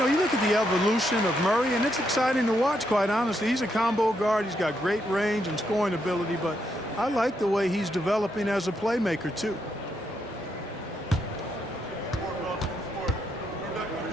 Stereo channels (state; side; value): normal; both; correlation 0.78